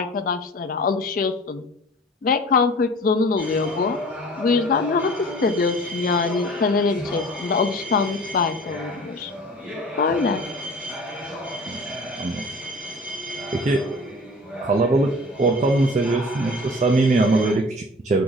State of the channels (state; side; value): normal; both; correlation 0.43